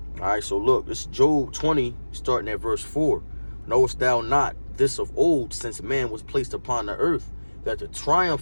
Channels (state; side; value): inverted; both; correlation -1.00